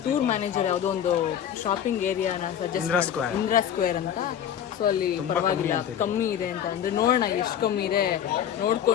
ಟೂರ್ ಮ್ಯಾನೇಜರ್ ಯಾವುದೋ ಒಂದು ಶಾಪಿಂಗ್ ಏರಿಯಾನ ಸಜೆಸ್ಟ್ ಇಂದಿರಾ ಸ್ಕ್ವೇರ್ ಅಂತ. ಸೊ ಅಲ್ಲಿ ಪರವಾಗಿಲ್ಲ ಕಮ್ಮಿ ಇದೆ ಅಂತ ಅಂದರೆ ನೋಡೋಣ ಎಷ್ಟು ಕಮ್ಮಿ ಇದೆ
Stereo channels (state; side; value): quieter; right; 9.6 dB